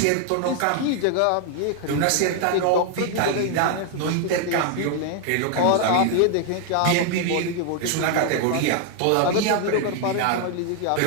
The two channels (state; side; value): different; both; correlation 0.00